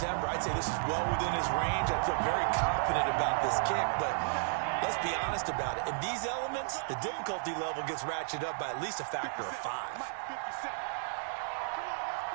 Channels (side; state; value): left; silent; digital silence